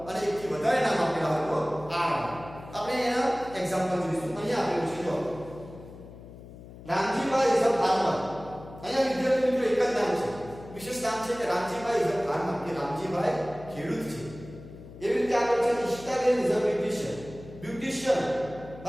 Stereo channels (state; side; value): noise; left; hum, 16 dB below the sound